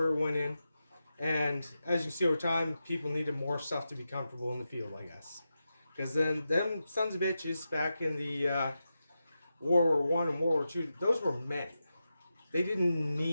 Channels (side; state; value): both; inverted; correlation -0.90